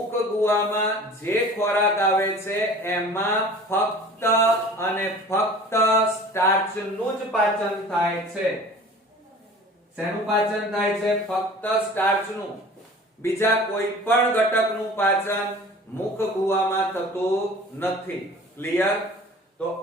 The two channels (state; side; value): normal; both; correlation 0.43